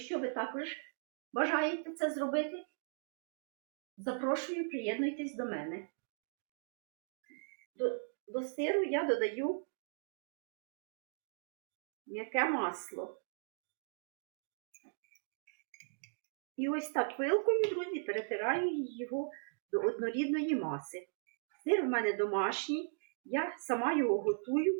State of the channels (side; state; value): left; silent; digital silence